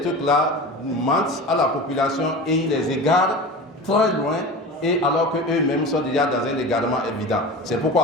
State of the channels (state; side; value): normal; both; correlation 0.31